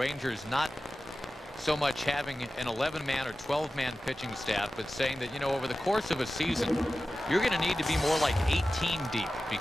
not so much having an 11-man or 12-man pitching staff, but saying that, you know, over the course of a season, you're going to need to be more like 18 deep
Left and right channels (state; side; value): normal; both; correlation 0.94